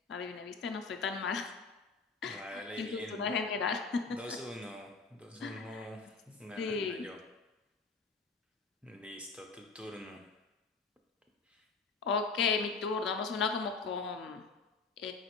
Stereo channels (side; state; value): right; quieter; 4.5 dB